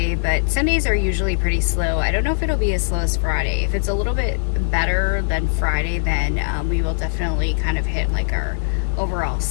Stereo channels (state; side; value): silent; right; digital silence